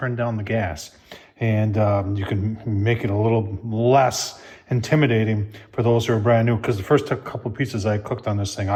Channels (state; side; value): identical; both; correlation 1.00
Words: down the gas. And you can make it a little less intimidating for those who are brand new. Because the first couple of pizzas I cooked on this thing,